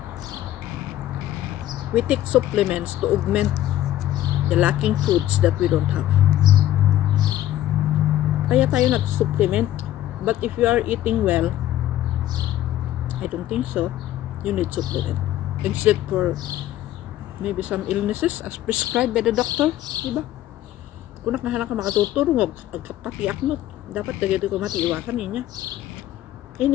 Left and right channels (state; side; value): quieter; right; 13.4 dB